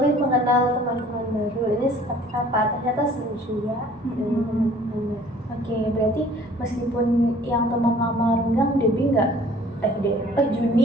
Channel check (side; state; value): both; normal; correlation 0.53